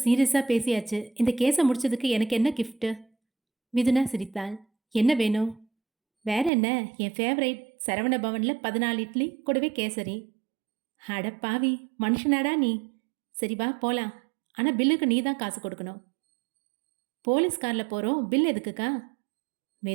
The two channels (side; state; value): left; drops out; at 6.5 s